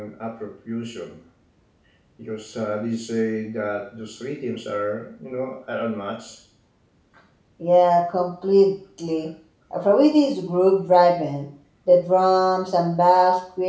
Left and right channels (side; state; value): both; identical; correlation 1.00